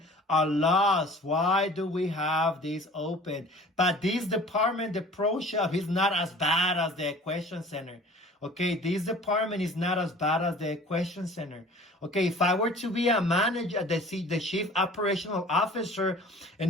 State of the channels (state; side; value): normal; both; correlation 0.46